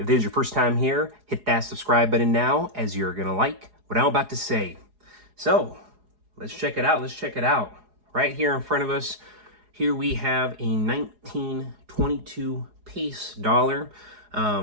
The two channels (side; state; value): left; late; 4.8 ms